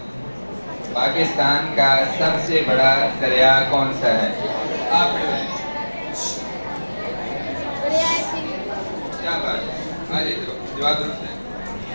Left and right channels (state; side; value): inverted; both; correlation -1.00